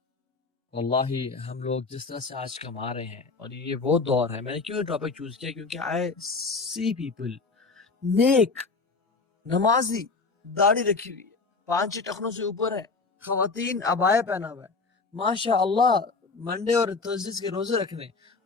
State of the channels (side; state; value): right; quieter; 4.2 dB